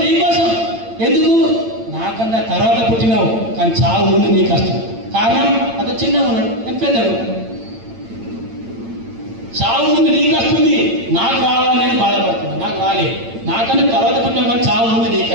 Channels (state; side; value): late; left; 8.8 ms